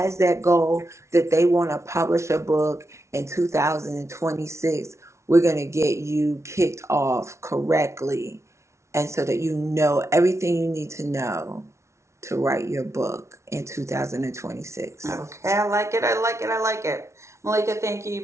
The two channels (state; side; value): late; left; 0.13 ms